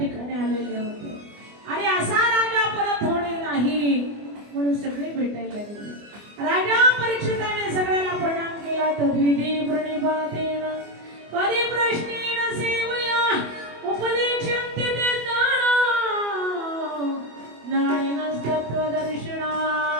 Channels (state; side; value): late; left; 24 ms